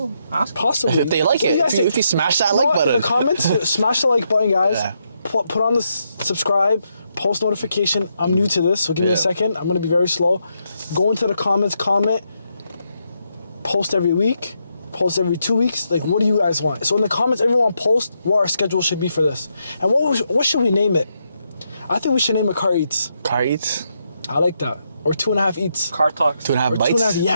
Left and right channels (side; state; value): both; inverted; correlation -0.80